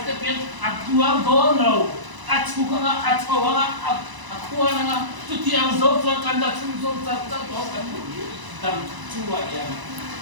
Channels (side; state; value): left; late; 1.0 ms